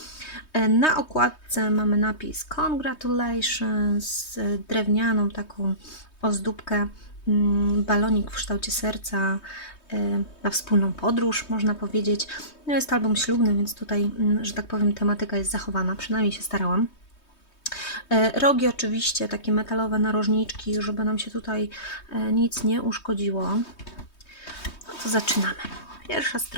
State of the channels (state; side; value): late; right; 3.2 ms